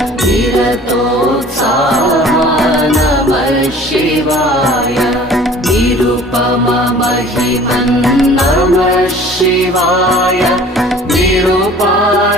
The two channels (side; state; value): both; normal; correlation 0.48